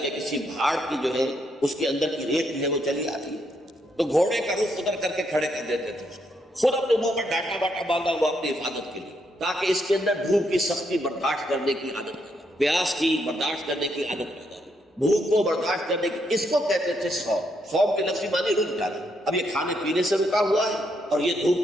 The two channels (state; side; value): normal; both; correlation 0.77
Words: کہ کسی بھاڑ کی جو ہے اس کے اندر کی ریت جو ہے وہ چلی آتی ہے، تو گھوڑے کا رخ ادھر کر کے کھڑے کر دیتے تھے، خود اپنے منہ پر ڈاٹا واٹا باندھا ہوا اپنی حفاظت کے لیے، تاکہ اس کے اندر دھوپ کی سختی برداشت کرنے کی عادت پیدا، پیاس کی برداشت کرنے کی عادت پیدا، بھوک کو برداشت کرنے کی، اس کو کہتے تھے صوم۔ صوم کے لفظی معنی رک جانا، اب یہ کھانے پینے سے رکا ہوا ہے اور یہ دھوپ